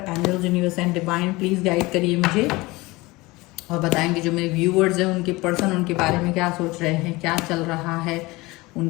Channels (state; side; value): quieter; right; 22.0 dB